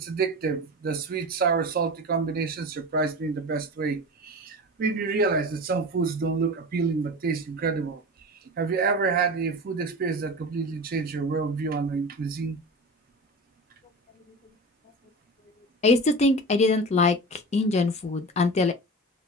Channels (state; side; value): normal; both; correlation 0.30